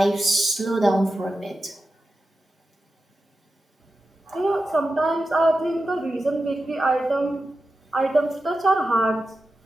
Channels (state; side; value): normal; both; correlation 0.91